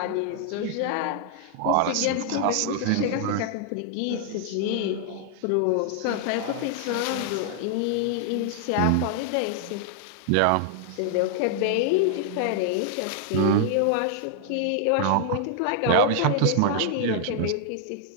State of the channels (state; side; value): different; both; correlation 0.00